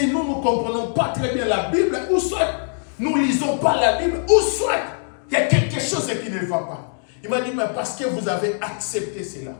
nous ne comprenons pas très bien la Bible, ou soit nous ne lisons pas la Bible, ou soit il y a quelque chose qui ne va pas. Il m'a dit, mais parce que vous avez accepté cela.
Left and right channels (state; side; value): silent; right; 64 dB below the other